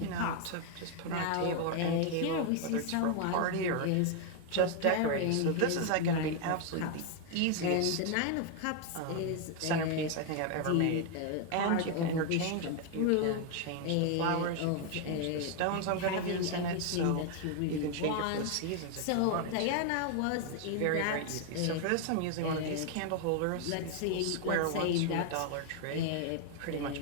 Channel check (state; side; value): different; both; correlation 0.00